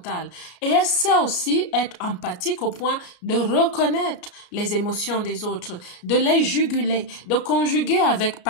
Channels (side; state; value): right; late; 34 ms